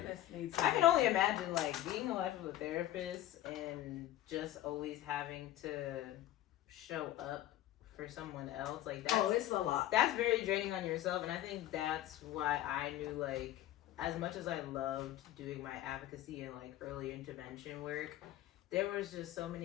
therapists need I can only imagine like being a life of a therapist and just always having to show up for someone else. Like that's It's a lot. that's very draining on yourself, and I think that's why I knew, like, as much as I loved doing my advocacy and like early intervention work, there was just so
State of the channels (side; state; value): right; quieter; 13.8 dB